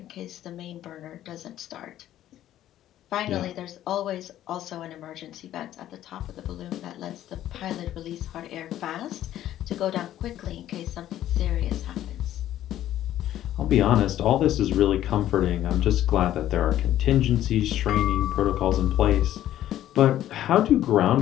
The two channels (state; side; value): quieter; right; 12.6 dB